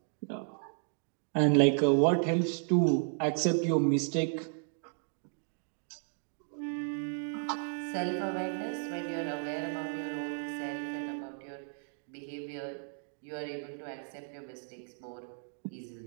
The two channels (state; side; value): silent; left; 55 dB below the other